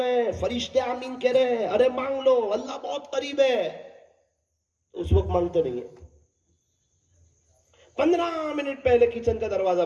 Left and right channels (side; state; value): both; identical; correlation 1.00